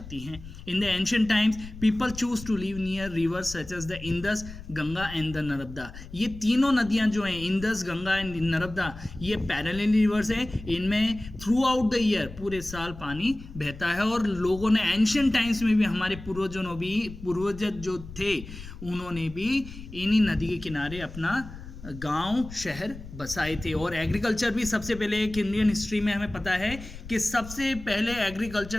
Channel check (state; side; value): noise; left; rumble, 14 dB below the sound